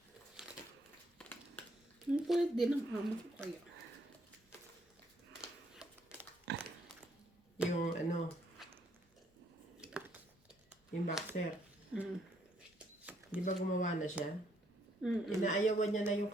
Ang kulit din ang amo ko kaya. Yung yung boxer. Mm. Di ba gumawa na siya? Mm-mm. Inaayawan niya na yung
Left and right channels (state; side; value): normal; both; correlation 0.70